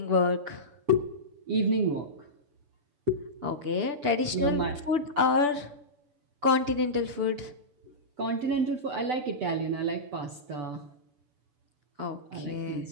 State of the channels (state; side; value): late; left; 6.9 ms